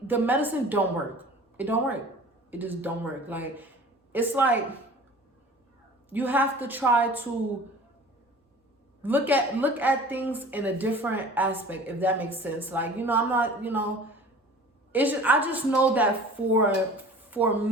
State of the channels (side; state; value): both; normal; correlation 0.43